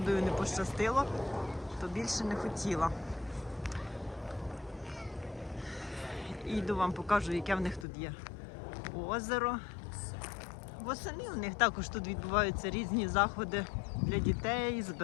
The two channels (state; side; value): drops out; right; at 7.9 s